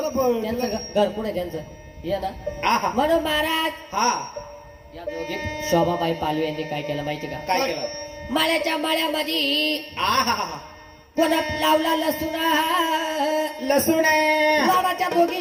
ना पण त्यांचं घर कुठे त्यांचं ये ना आहा म्हणून महाराज हा या दोघी शोभाबाई पालवे यांनी काय केलं माहिती का काय केलं माळ्याच्या माळ्यामध्ये आहा कोणा लावला लसुणा लसूण गावाच्या दोघी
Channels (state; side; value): identical; both; correlation 1.00